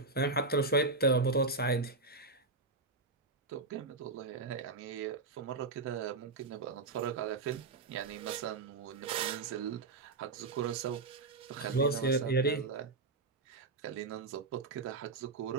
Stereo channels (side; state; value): left; quieter; 3.8 dB